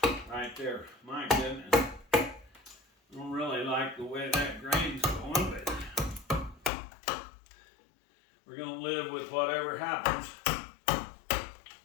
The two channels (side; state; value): right; drops out; at 6.7 s